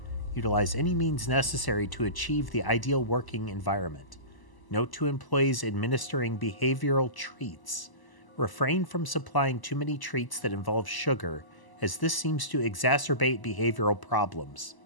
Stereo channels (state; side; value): late; right; 1.0 ms